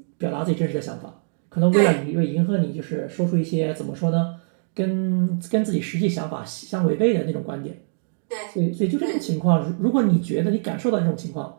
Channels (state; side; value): silent; left; digital silence